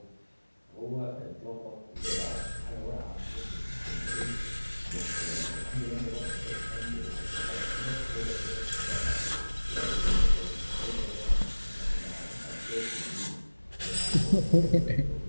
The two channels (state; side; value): inverted; both; correlation -1.00